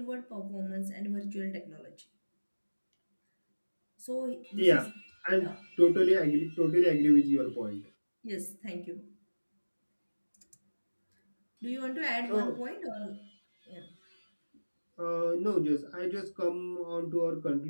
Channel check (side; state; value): both; inverted; correlation -1.00